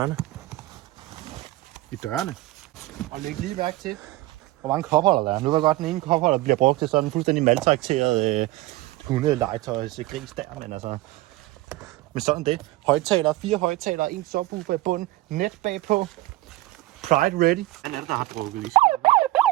I dørene. Og læg lige mærke til, hvor mange kopholder der er. Nu ved jeg godt, den ene kopholder bliver brugt til sådan en fuldstændig maltrakteret hundelegetøjs gris der, men altså... Men sådan det. Højtalere, 4 højtalere, 1 subwoofer i bunden, net bagpå. Pride ready. Hvad er det, der har drukket lige?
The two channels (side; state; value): left; quieter; 18.2 dB